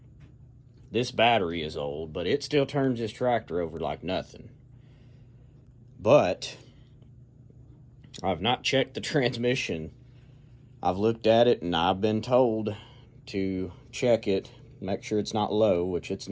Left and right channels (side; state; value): both; identical; correlation 1.00